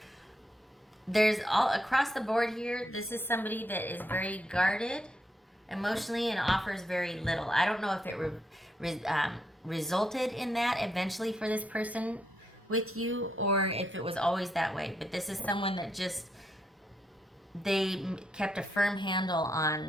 There's all across the board here. This is somebody that is very guarded emotionally and offers very little. I don't know if it resulted in that eventually for this person with you, or if it was always that way. But this is someone that just, they kept a firm handle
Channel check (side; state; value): both; normal; correlation 0.79